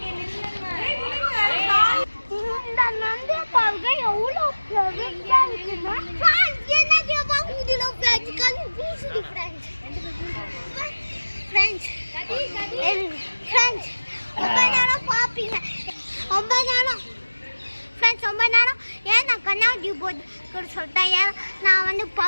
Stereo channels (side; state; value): both; inverted; correlation -1.00